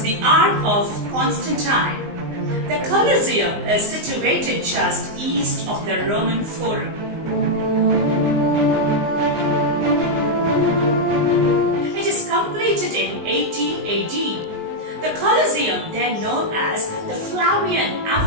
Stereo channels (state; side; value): late; left; 19 ms